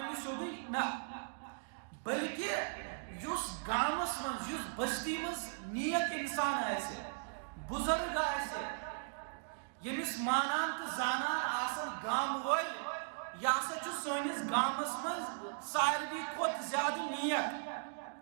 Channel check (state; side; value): silent; left; digital silence